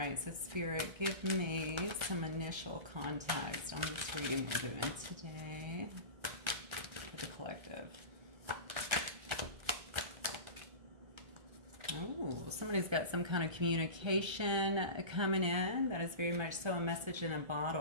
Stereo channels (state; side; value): late; left; 1.3 ms